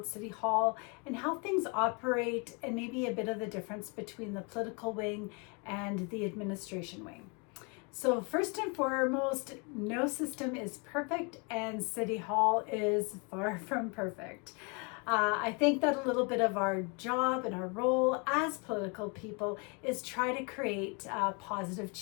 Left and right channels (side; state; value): right; quieter; 32.4 dB